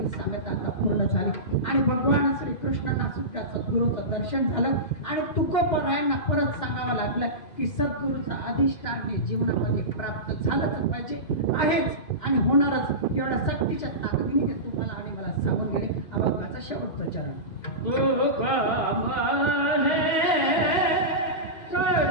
साम्यता आता पूर्ण झाली आणि भगवान श्रीकृष्णांना सुद्धा सद्गुरूचं दर्शन झालं आणि तुकोबरायांना परत सांगावं लागलं की सद्गुरूचं अधिष्ठान हे जीवनामध्ये प्राप्त झालंच पाहिजे, आहेच आणि होणारच. एवढ्या सक्तीच्या ताकदीने ते तुम्हाला आणि मला सांगून गेले. अभंगाचा शेवटचा चरण.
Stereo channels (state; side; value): late; right; 2.5 ms